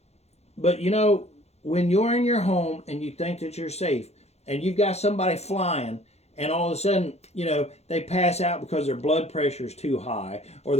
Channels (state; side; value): late; right; 0.31 ms